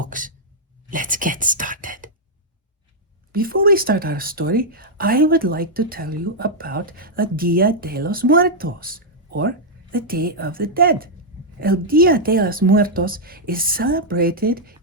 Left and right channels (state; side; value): normal; both; correlation -0.05